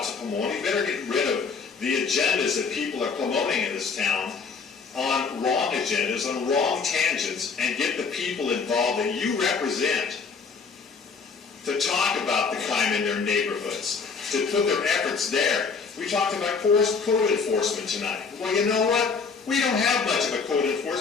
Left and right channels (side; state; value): right; quieter; 5.2 dB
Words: to Pomona. You better get rid of the agendas that people are promoting in this town on wrong agendas, on wrong tangents, and get the people involved that you represent to talk about the crime in their neighborhoods, to put their efforts there. We talked about code enforcement tonight. Well, you know what? We don't have much of a code